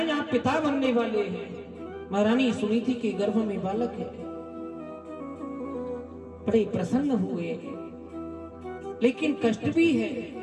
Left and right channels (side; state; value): both; identical; correlation 1.00